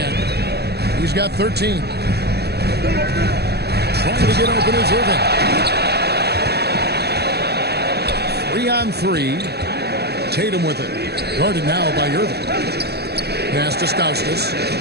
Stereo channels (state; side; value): late; left; 0.47 ms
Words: He's got 13. Trying to get open is Irving. 3-on-3. Tatum with it. Guarded now by Irving. Pass to Stauskas.